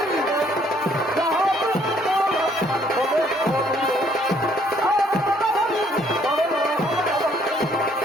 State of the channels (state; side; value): normal; both; correlation 0.64